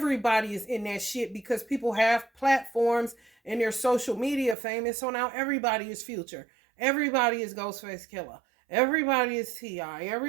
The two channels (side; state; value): left; drops out; at 4.5 s